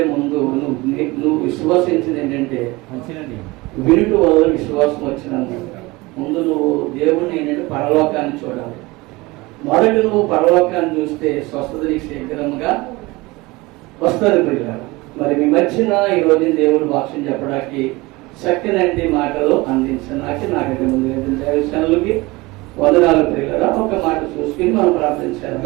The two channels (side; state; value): left; quieter; 22.4 dB